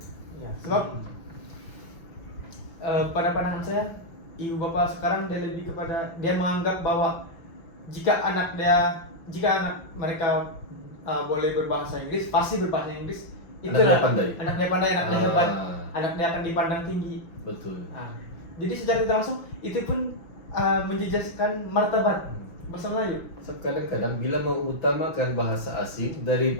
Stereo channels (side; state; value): right; late; 6.0 ms